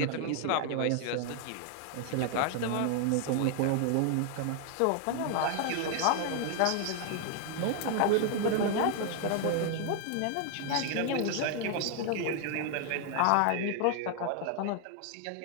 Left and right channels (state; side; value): different; both; correlation 0.00